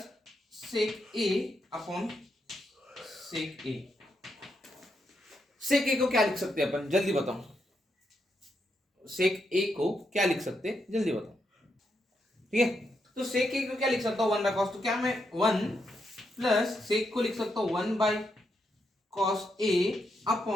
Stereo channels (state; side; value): normal; both; correlation 0.81